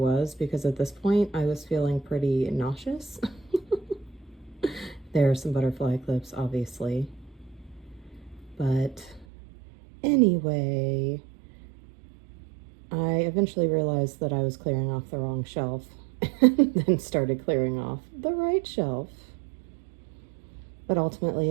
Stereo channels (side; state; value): left; drops out; at 9.2 s